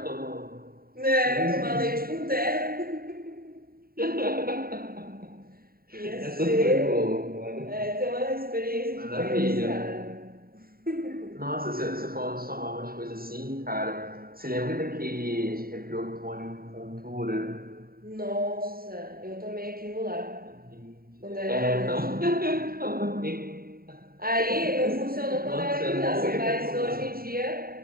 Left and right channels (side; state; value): left; late; 0.43 ms